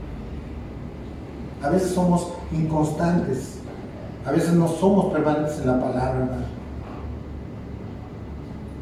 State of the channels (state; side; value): identical; both; correlation 1.00